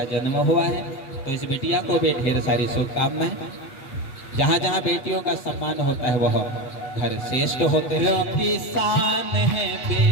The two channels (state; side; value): late; right; 8.1 ms